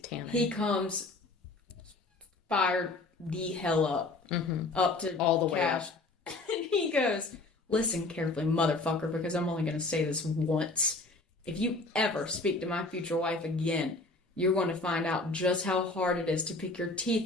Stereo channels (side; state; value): right; quieter; 3.2 dB